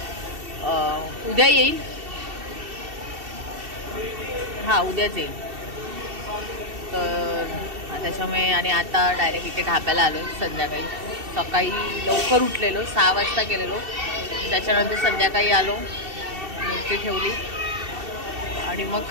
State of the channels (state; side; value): late; left; 2.7 ms